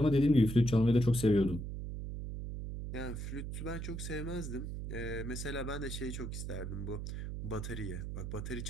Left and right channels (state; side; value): noise; right; hum, 5 dB below the sound